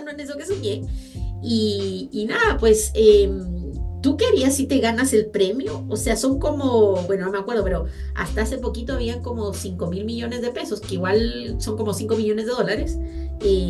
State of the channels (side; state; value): both; identical; correlation 1.00